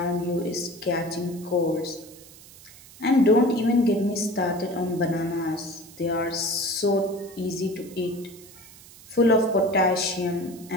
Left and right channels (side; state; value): right; noise; hiss, 21 dB below the sound